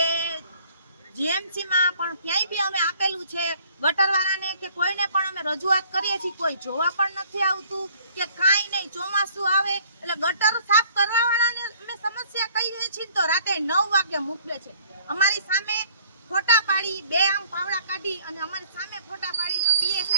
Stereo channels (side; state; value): both; inverted; correlation -0.58